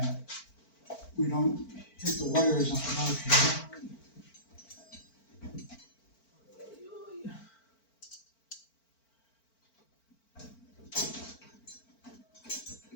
we don't hit the wires up above here.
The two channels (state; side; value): late; right; 4.5 ms